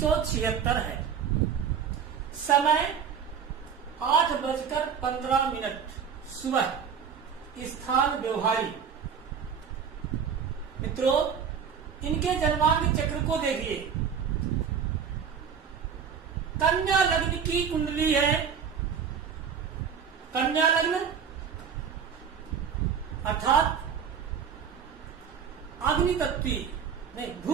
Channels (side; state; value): left; quieter; 7.1 dB